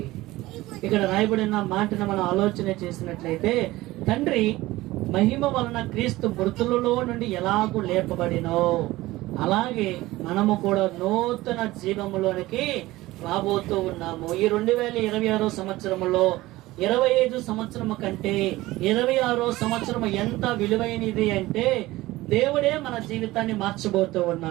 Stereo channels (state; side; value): quieter; left; 18.2 dB